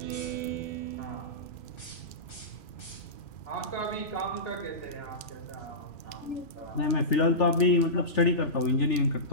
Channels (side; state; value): right; late; 2.4 ms